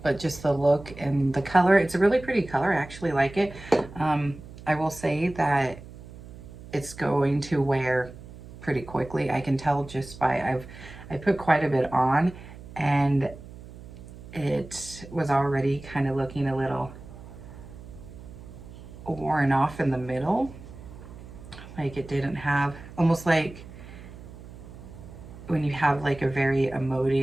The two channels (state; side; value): noise; right; hum, 16 dB below the sound